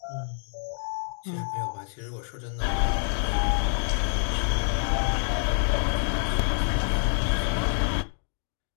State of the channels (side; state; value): right; silent; 60 dB below the other